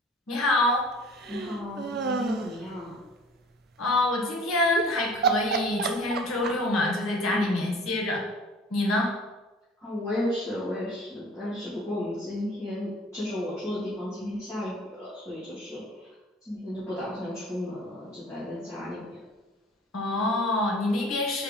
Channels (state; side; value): normal; both; correlation 0.47